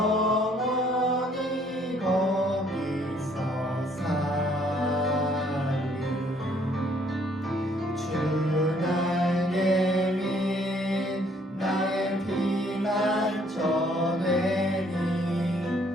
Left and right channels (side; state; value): both; normal; correlation 0.64